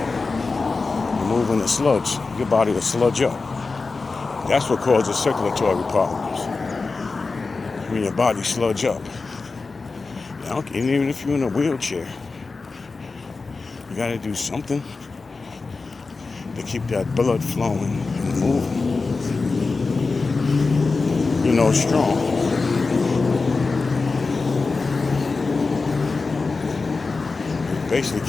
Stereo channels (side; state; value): right; quieter; 4.0 dB